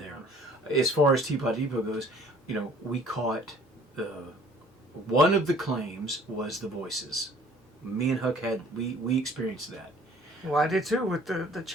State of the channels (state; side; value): normal; both; correlation 0.54